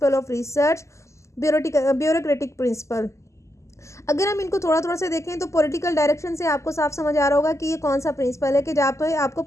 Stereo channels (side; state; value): right; late; 0.14 ms